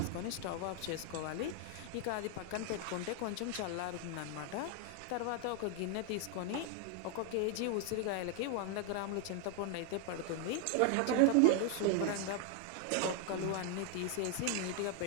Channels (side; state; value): both; different; correlation 0.00